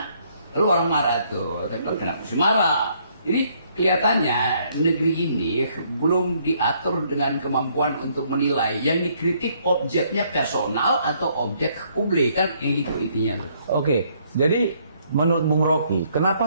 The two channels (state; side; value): inverted; both; correlation -0.68